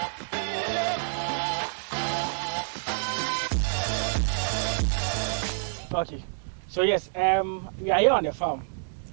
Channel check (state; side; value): silent; left; digital silence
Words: Okay, so yes, we are here on the farm.